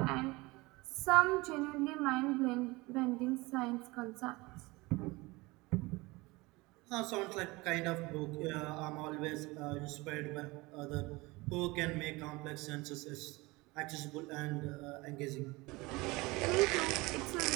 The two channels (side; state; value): left; quieter; 22.9 dB